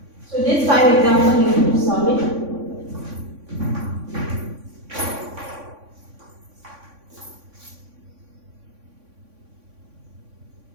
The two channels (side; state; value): left; late; 3.6 ms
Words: So this 5 example you need to solve it.